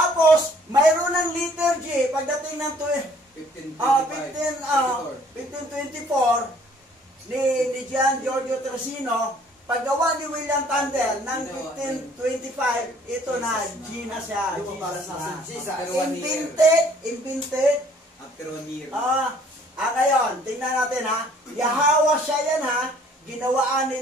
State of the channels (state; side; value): normal; both; correlation 0.58